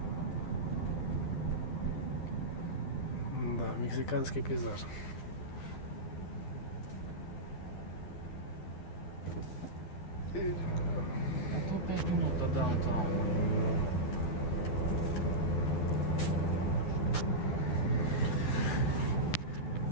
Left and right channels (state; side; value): late; right; 11 ms